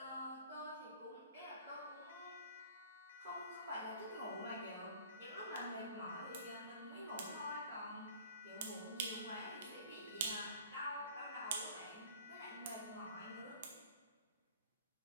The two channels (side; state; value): both; inverted; correlation -0.47